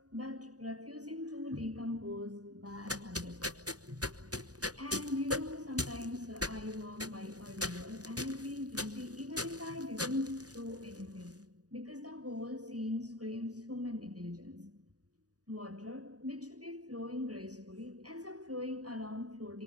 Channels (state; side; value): late; left; 0.68 ms